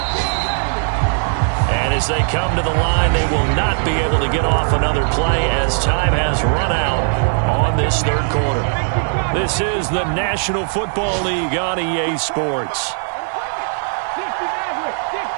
And as they come to the line, they will not be able to get off another play as time has run out on this 3rd quarter. This is the National Football League on EA Sports.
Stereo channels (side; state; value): left; silent; 67 dB below the other